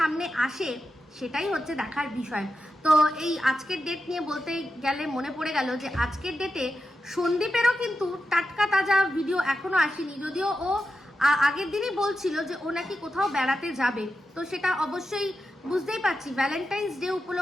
আসে, সেটাই হচ্ছে দেখার বিষয়। তো এই আজকের ডেট নিয়ে বলতে গেলে মনে পড়ে গেল যে আজকের ডেটে সন্দীপেরও কিন্তু টাটকা তাজা ভিডিও এখনো আসেনি। যদিও ও আগের দিনই বলছিল যে ও নাকি কোথাও বেড়াতে যাবে, তো সেটা অবশ্যই বুঝতেই পারছি ভ্যালেন্টাইন্স ডে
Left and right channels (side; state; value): both; normal; correlation 0.89